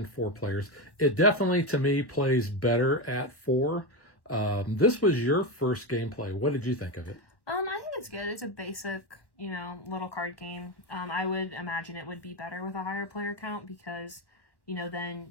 4 players. It definitely, to me, plays better at 4. This was your first gameplay. What did you think of it? I think it's good. It's a basic, little card game. I would imagine it would be better with a higher player count because,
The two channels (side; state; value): right; late; 1.1 ms